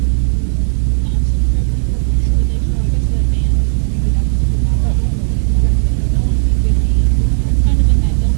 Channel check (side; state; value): left; silent; digital silence